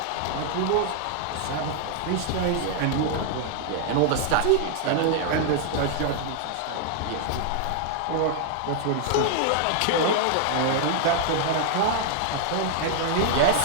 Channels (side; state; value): both; different; correlation 0.00